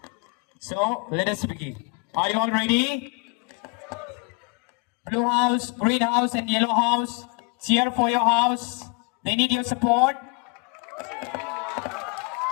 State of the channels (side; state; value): right; quieter; 32.3 dB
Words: So, let us begin. Are you all ready? Blue house, green house, and yellow house, cheer for your house. They need your support.